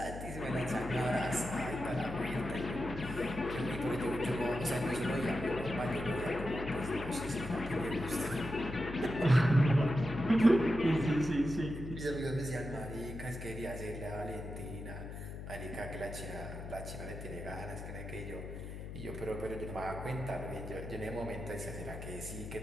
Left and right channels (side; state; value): left; noise; hum, 9 dB below the sound